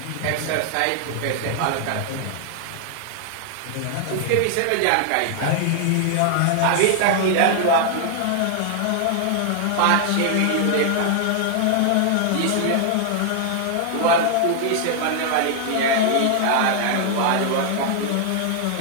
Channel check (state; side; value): different; both; correlation 0.00